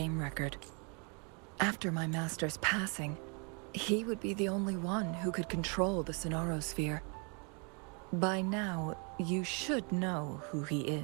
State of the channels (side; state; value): left; quieter; 35.2 dB